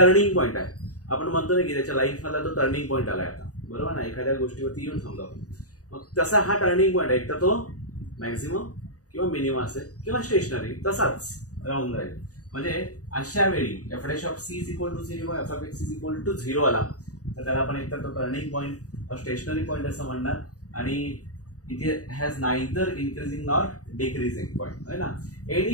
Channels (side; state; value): right; late; 0.67 ms